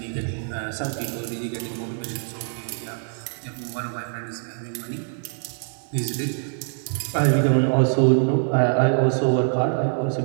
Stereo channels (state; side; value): silent; left; 62 dB below the other